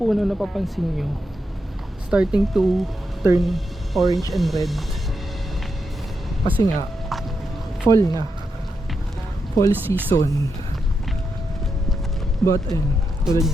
na papansin nyo, starting to turn orange and red. Kasi nga, fall na. Fall season. But ayun, tulad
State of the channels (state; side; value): normal; both; correlation 0.85